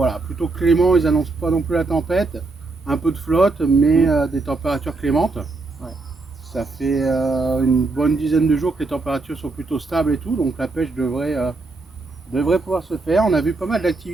plutôt clément, ils annoncent pas non plus la tempête. Un peu de flotte, mais des températures clémentes. Ouais. Ça fait une bonne dizaine de jours que les températures sont plutôt stables et tout, donc la pêche devrait pouvoir se faire. On a vu pas mal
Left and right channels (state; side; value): quieter; left; 3.5 dB